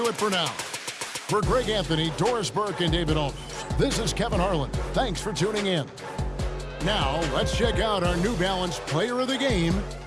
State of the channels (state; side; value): identical; both; correlation 1.00